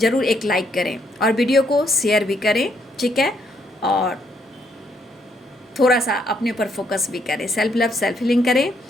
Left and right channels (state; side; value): normal; both; correlation 0.73